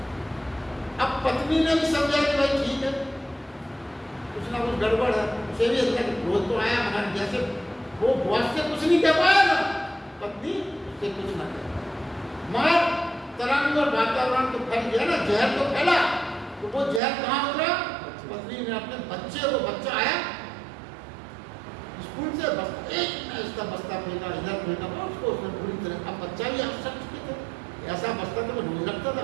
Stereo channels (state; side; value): drops out; left; at 17.0 s